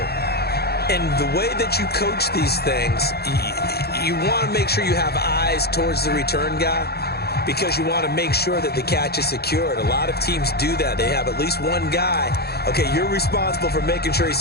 And the way that you coach these things, you want to make sure you have eyes towards the return guy, because you want to make sure that the catch is secured. A lot of teams do that. They have at least one guy. Okay, you're responsible for making sure he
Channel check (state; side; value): late; right; 0.46 ms